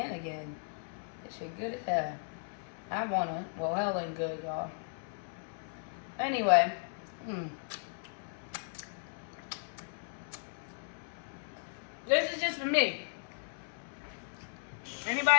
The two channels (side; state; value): right; silent; 54 dB below the other